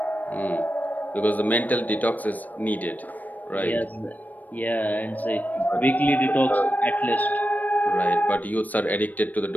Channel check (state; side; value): late; right; 0.081 ms